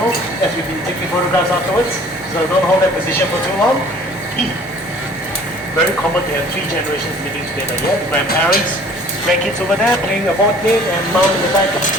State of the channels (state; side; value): normal; both; correlation 0.51